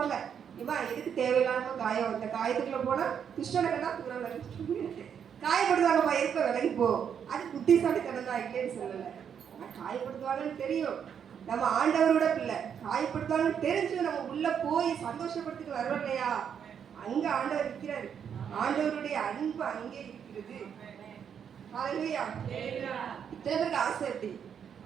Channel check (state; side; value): quieter; left; 7.9 dB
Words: இவா எதுக்கு தேவையில்லாம காயம், இந்த காயத்துக்குள்ள போனா துஷ்டனக்கெல்லாம் தூரம் விலகி காயப்படுத்துவாங்கப்பா, எதுக்கு விலகி போ. அது புத்திசாலித்தனம் தான், இல்லைன்னு சொல்லலை. ஆனால் காயப்படுத்துவாங்கன்னு தெரியும். நம்ம ஆண்டவரோட பிள்ளை, காயப்படுத்துவாங்கன்னு தெரிஞ்சு நம்ம உள்ள போய் சந்தோஷப்படுத்திட்டு வரோம் இல்லையா? அங்க ஆண்டவர் இருக்கிறாரு. ஆண்டவருடைய அன்பு அங்கே இருக்கிறது. ஹல்லேலூயா. இத்தனை பேருக்கு ஆசை எப்படி?